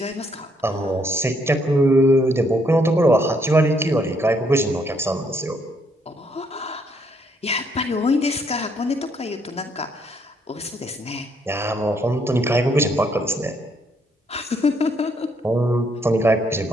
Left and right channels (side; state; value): both; normal; correlation 0.71